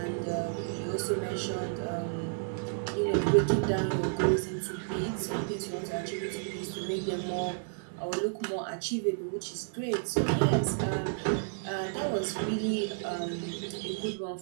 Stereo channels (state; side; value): silent; left; digital silence